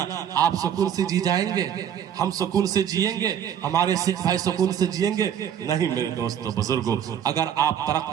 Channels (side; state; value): left; quieter; 9.2 dB